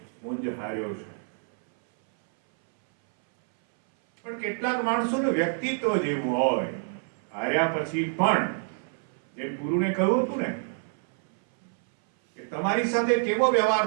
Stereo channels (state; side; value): silent; left; 60 dB below the other